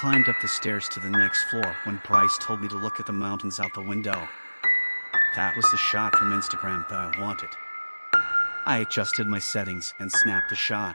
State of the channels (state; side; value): inverted; both; correlation -1.00